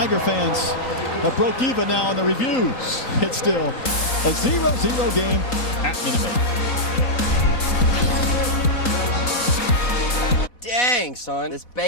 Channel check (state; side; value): late; right; 4.1 ms